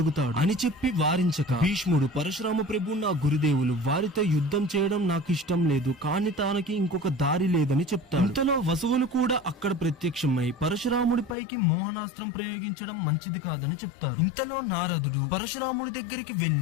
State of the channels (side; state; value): right; drops out; at 11.4 s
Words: అని చెప్పి వారించక భీష్ముడు, పరశురామ ప్రభు నా గురుదేవులు, వారితో యుద్ధం చేయడం నాకు ఇష్టం లేదు, కానీ తనకి ఇంకొక దారి లేదని చెప్తాడు. ఇంతలో వసువులు కూడా అక్కడ ప్రత్యక్షమై పరశురాముడిపైకి మోహనాస్త్రం ప్రయోగించడం మంచిది కాదని చెప్తారు. ఇంతలో నారదుడు పరశురాముడి దగ్గరికి